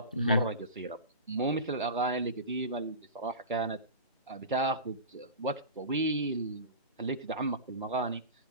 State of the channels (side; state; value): both; inverted; correlation -0.30